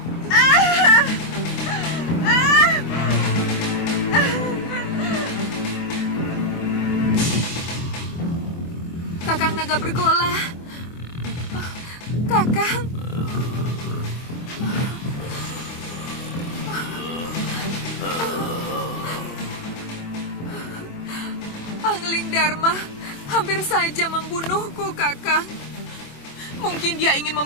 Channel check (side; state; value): right; late; 24 ms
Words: Kakang Naga Bergola. Kakang. Dharma hampir saja membunuhku, Kakang. Mungkin dia ingin